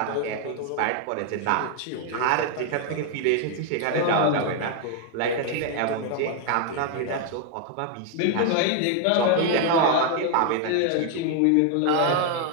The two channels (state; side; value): different; both; correlation 0.00